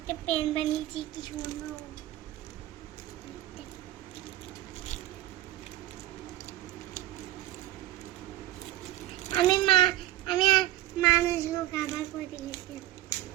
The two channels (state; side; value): quieter; left; 15.2 dB